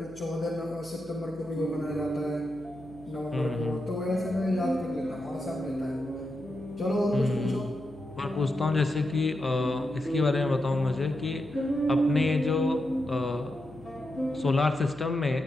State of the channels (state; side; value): noise; left; hum, 22 dB below the sound